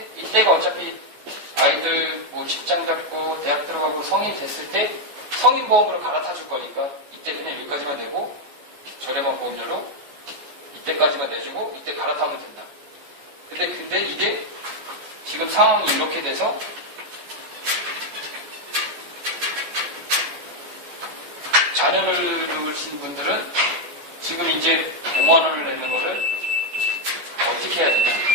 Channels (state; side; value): late; left; 14 ms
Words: 이때가 어차피 아이들 뭐 직장 잡고 대학 들어가고 성인 됐을 때 성인 보험으로 갈아타 줄 거니까 이때 그냥 여기까지만 내고 저렴한 보험료로 이때까지만 내주고 이때 갈아타면 된다. 근데 이게 지금 상황이 이렇게 돼서 자녀를 두신 분들은 지금 이제 5만 원을 내는 거를 어떻게 해야 되냐?